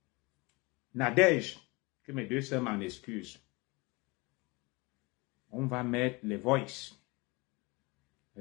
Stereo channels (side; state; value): right; quieter; 25.6 dB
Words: Nadège, que mes deux sœurs m'en excusent. On va mettre les voices.